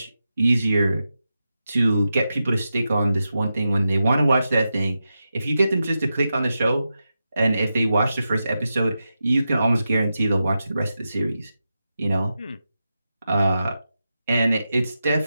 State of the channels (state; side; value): inverted; both; correlation -0.90